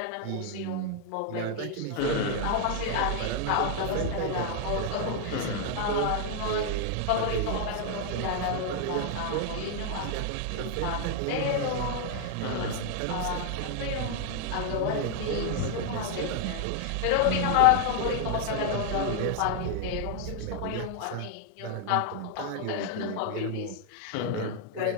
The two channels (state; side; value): different; both; correlation 0.00